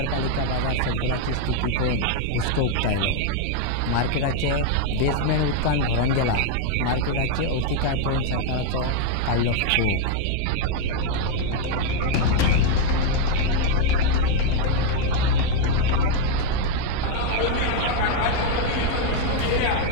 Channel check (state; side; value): different; both; correlation 0.01